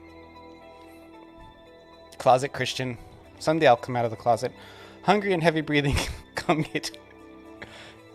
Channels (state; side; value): identical; both; correlation 1.00